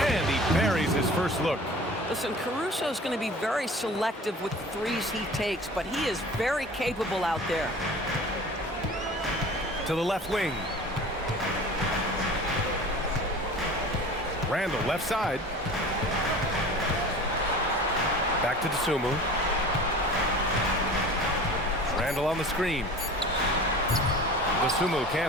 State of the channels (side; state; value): both; normal; correlation 0.40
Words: And he buries his first look. Listen, Caruso is going to be very selective with the threes he takes, but he is very capable out there. To the left wing. Randle, left side. Back to Dosunmu. Randle on the screen. Dosunmu